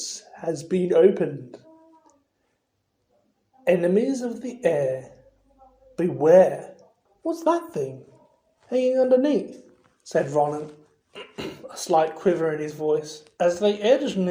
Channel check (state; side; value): identical; both; correlation 1.00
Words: has been opened. Enemies of the air, beware. What's that thing hanging underneath? Said Ron, a slight quiver in his voice. As they edged